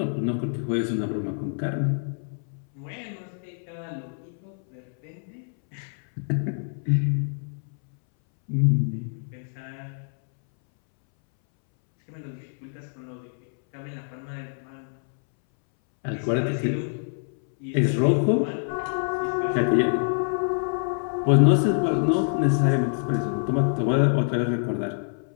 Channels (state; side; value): silent; right; 61 dB below the other